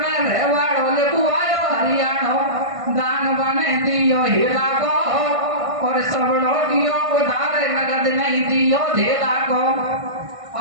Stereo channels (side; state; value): left; late; 1.5 ms